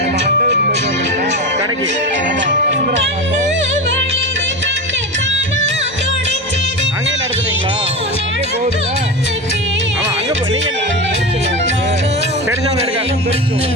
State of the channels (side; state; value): both; normal; correlation 0.22